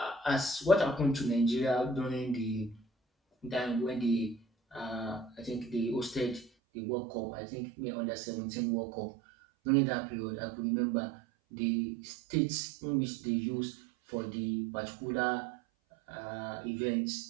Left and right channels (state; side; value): drops out; left; at 6.5 s